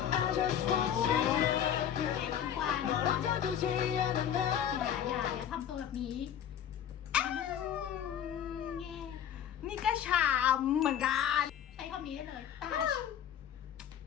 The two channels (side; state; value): right; quieter; 9.5 dB